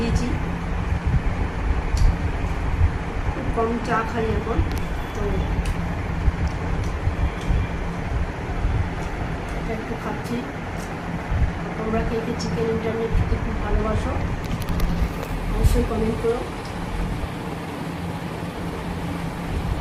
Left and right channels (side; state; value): both; identical; correlation 1.00